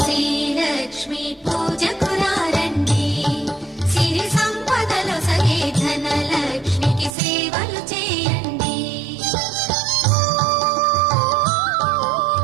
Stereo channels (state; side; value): drops out; left; at 7.2 s